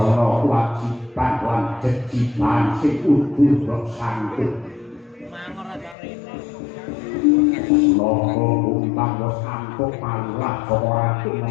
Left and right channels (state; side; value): drops out; right; at 6.0 s